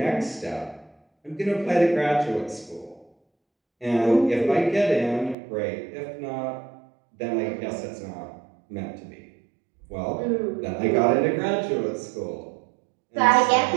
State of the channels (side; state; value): left; drops out; at 5.4 s